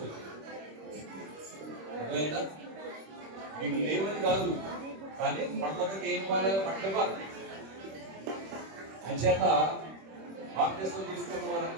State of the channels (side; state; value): left; late; 26 ms